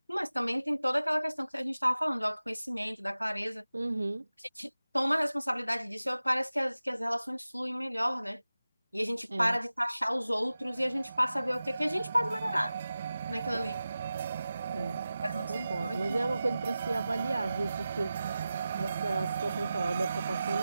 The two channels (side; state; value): both; inverted; correlation -0.95